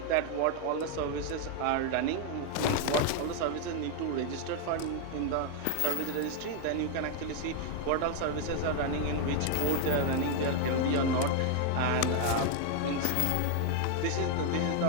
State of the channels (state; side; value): different; both; correlation 0.01